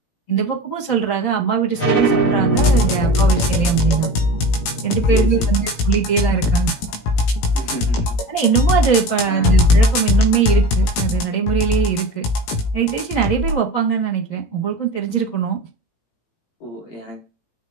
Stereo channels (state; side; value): late; right; 18 ms